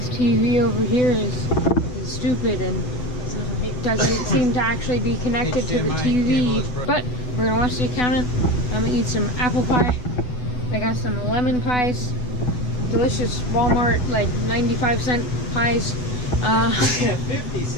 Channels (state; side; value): late; right; 8.0 ms